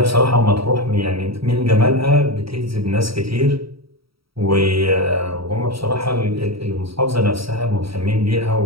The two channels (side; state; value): left; late; 0.75 ms